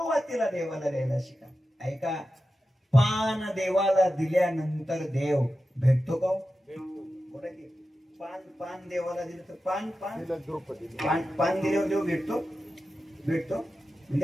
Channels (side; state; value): both; normal; correlation 0.92